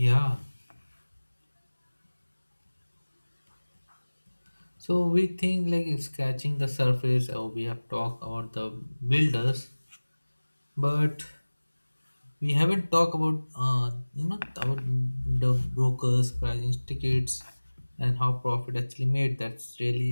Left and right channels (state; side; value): inverted; both; correlation -1.00